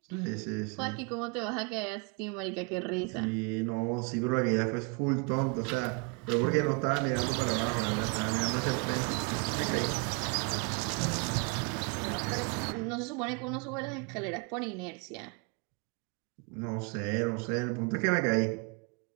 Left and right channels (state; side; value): quieter; left; 33.3 dB